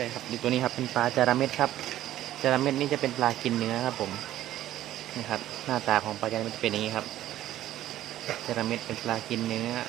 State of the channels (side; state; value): left; quieter; 13.3 dB